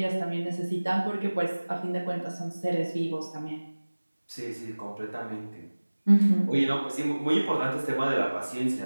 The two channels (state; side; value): inverted; both; correlation -1.00